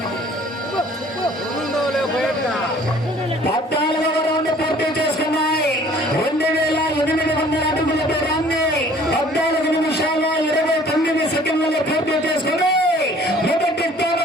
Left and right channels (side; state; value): both; normal; correlation 0.53